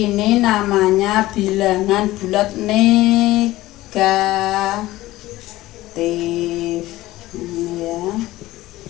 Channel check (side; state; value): right; quieter; 17.1 dB